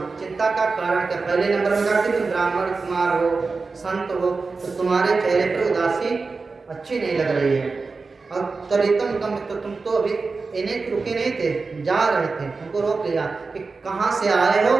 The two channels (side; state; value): left; quieter; 4.2 dB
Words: चिंता का कारण क्या। पहले नंबर में कहा कि तुम ब्राह्मण कुमार हो, संत हो, तो तुम्हारे चेहरे पर उदासी अच्छी नहीं लग रही है। और तरीतम कम, तो तुम तो अभी इन्हें रुके नहीं थे, जा रहे थे, तुमको रोक लिया कि कहाँ से आए हो